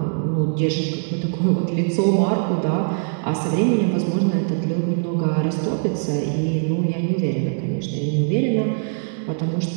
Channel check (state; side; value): silent; left; digital silence